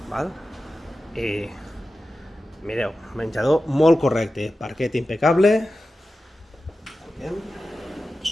val? I mireu, menjador molt correcte, parquet impecable,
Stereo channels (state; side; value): normal; both; correlation 0.93